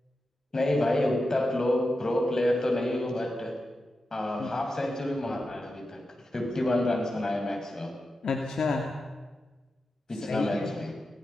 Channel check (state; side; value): normal; both; correlation 0.90